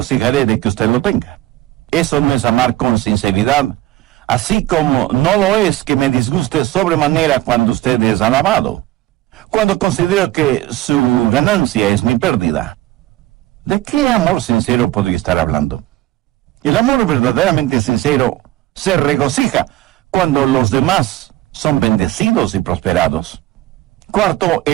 de que usted lo tenga. Eso no es amar con sinceridad. así como no lo es que me disguste sobremanera cuando usted es alabado, cuando considero que su ganancia es mi pérdida. ¿De qué amor sincero podría estar hablando? El amor verdaderamente sincero se regocija cuando los demás son bendecidos y prosperados. Cuarto,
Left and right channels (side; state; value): left; quieter; 15.9 dB